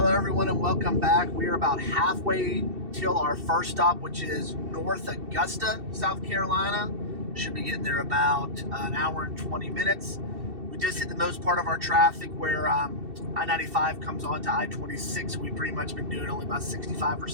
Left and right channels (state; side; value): late; left; 2.7 ms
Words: everyone, and welcome back. We are about halfway till our first stop, which is North Augusta, South Carolina. Should be getting there about an hour and 20 minutes. We just hit the most part of our traffic where I-95 comes on to I-26. We've pretty much been doing only about 65 or